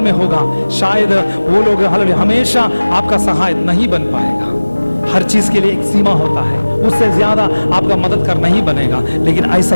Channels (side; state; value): both; inverted; correlation -1.00